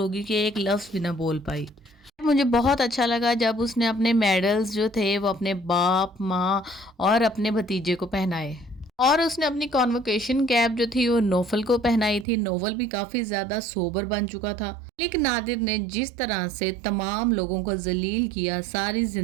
گئی کہ ایک لفظ بھی نہ بول پائی۔ مجھے بہت اچھا لگا جب اس نے اپنے میڈلز جو تھے وہ اپنے باپ، ماں اور اپنے بھتیجے کو پہنائے، اور اس نے اپنی کانوکیشن کیپ جو تھی وہ نوفل کو پہنائی تھی۔ نوفل بھی کافی زیادہ سوبر بن چکا تھا، لیکن نادر نے جس طرح سے تمام لوگوں کو ذلیل کیا، ساری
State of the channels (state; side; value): drops out; left; at 12.2 s